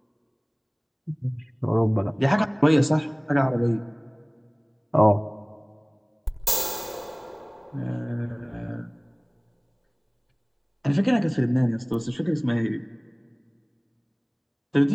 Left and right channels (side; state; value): both; identical; correlation 1.00